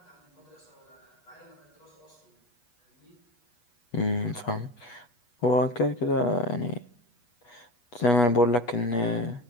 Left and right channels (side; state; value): right; late; 8.3 ms